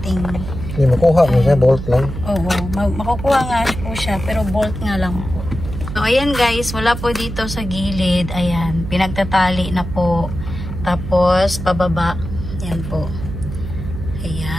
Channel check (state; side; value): noise; right; hum, 8 dB below the sound